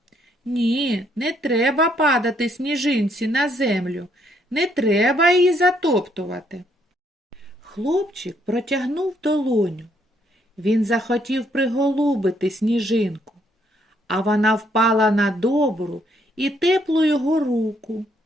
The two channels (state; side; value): normal; both; correlation 0.71